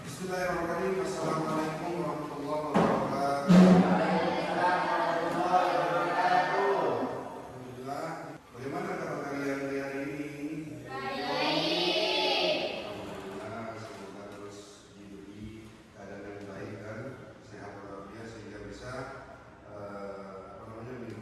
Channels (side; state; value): both; identical; correlation 1.00